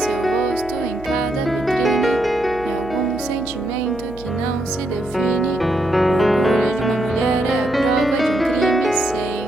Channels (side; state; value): right; noise; hum, 16 dB below the sound